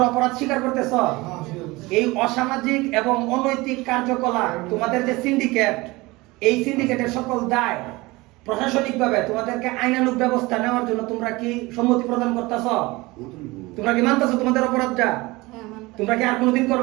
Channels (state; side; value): quieter; left; 22.0 dB